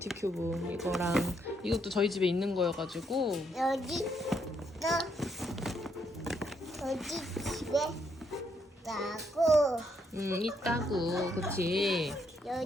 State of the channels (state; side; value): normal; both; correlation 0.74